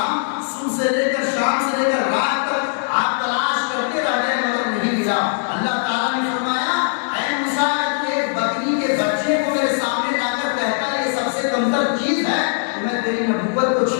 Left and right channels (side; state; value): right; silent; 66 dB below the other